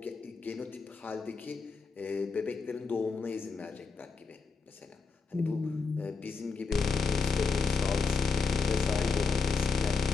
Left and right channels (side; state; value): right; quieter; 4.9 dB